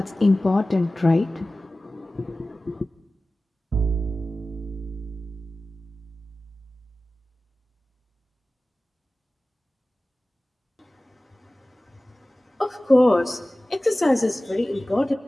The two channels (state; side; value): normal; both; correlation 0.96